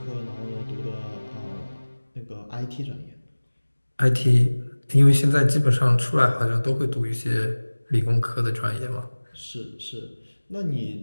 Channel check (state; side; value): inverted; both; correlation -1.00